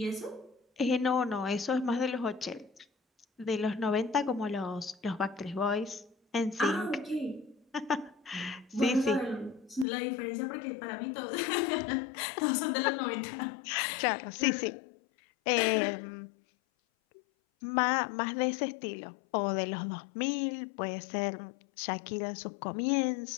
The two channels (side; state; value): right; drops out; at 9.9 s